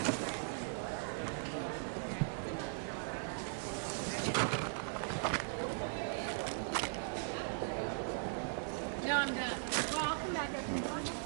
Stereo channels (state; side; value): silent; left; digital silence